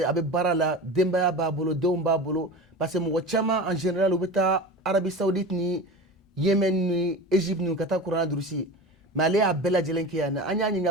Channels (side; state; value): both; normal; correlation 0.30